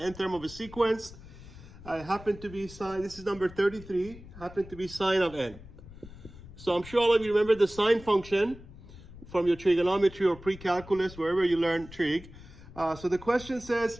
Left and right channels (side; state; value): left; noise; rumble, 17 dB below the sound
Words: term of a sequence. I happen to be sine, this is number 33, happen to be sine of n. So I'm sure all of you remember the sine function from your trigonometry or pre-calculus, wherever you learn trig. So the question